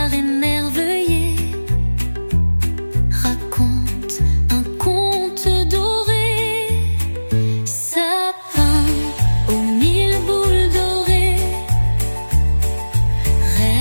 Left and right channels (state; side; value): inverted; both; correlation -1.00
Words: émerveillé raconte un